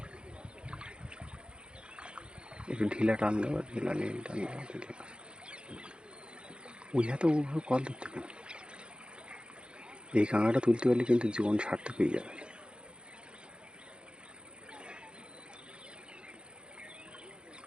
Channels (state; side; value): late; left; 0.053 ms